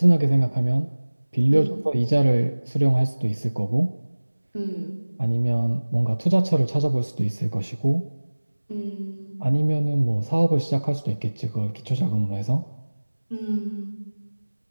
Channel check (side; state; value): both; inverted; correlation -1.00